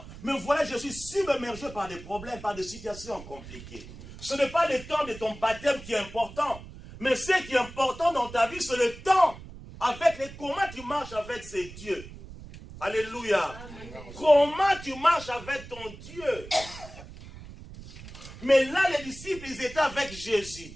Mais voilà, je suis submergé par des problèmes, par des situations compliquées. Ce n'est pas le temps de ton baptême qui est important. Mais ce qui est important dans ta vie, c'est le temps avec comment tu marches avec ces dieux. Alléluia. Amen. Comment tu marches avec ton Dieu. Mais là, les disciples, ils étaient avec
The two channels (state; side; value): noise; right; rumble, 15 dB below the sound